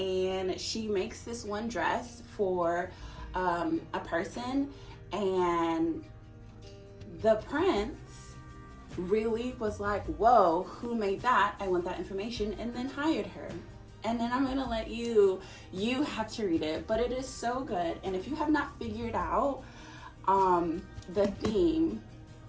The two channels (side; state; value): both; identical; correlation 1.00